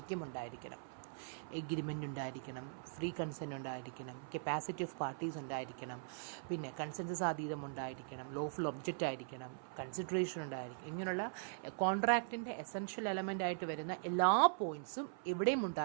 ഉണ്ടായിരിക്കണം. എഗ്രിമെൻ്റ് ഉണ്ടായിരിക്കണം, ഫ്രീ കൺസെൻറ്റ് ഉണ്ടായിരിക്കണം, കപ്പാസിറ്റി ഓഫ് പാർട്ടീസ് ഉണ്ടായിരിക്കണം, പിന്നെ കൺസെൻസസ് അതീതം ഉണ്ടായിരിക്കണം, ലോഫുൾ ഒബ്ജക്റ്റ് ആയിരിക്കണം, കൺസിഡറേഷൻ ഉണ്ടായിരിക്കും. ഇങ്ങനെയുള്ള കോൺട്രാക്റ്റിൻ്റെ എസെൻഷ്യൽ എലമെൻ്റ് ആയിട്ട് വരുന്ന എല്ലാ പോയിൻറ്റ്സും എവിടെയും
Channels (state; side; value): silent; left; 50 dB below the other